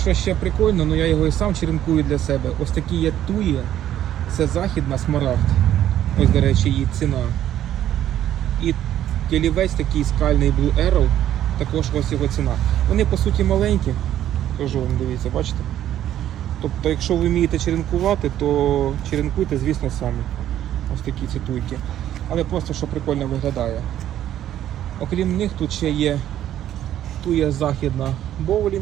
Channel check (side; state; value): left; quieter; 11.7 dB